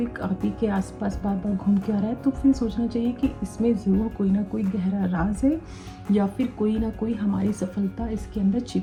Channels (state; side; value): identical; both; correlation 1.00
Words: आप ही के आसपास बार बार घूम के आ रहा है, तो फिर सोचना चाहिए कि इसमें ज़रूर कोई ना कोई गहरा राज है या फिर कोई ना कोई हमारी सफलता इसके अंदर